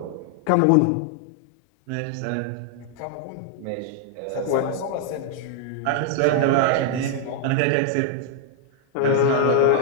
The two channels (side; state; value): both; different; correlation 0.00